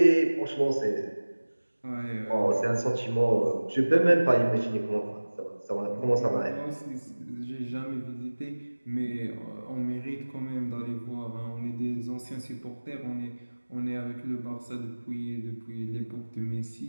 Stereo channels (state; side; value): inverted; both; correlation -1.00